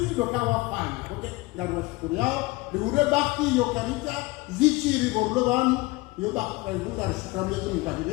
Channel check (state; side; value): quieter; right; 21.8 dB